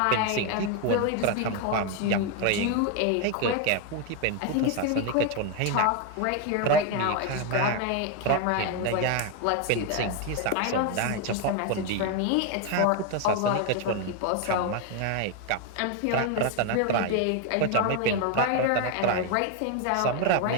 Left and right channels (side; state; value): both; different; correlation 0.01